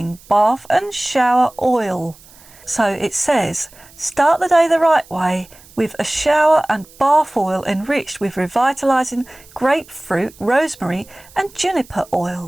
Bath and Shower Oil. So it says, start the day the right way with a shower and bath oil enriched with revitalising grapefruit, rosemary and juniper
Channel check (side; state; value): right; noise; hiss, 24 dB below the sound